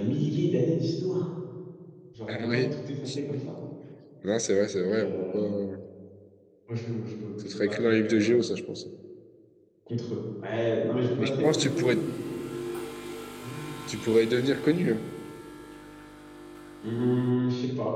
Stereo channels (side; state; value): both; identical; correlation 1.00